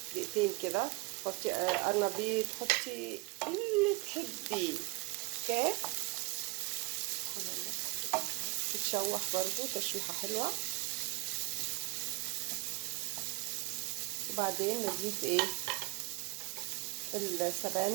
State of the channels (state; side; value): quieter; left; 25.5 dB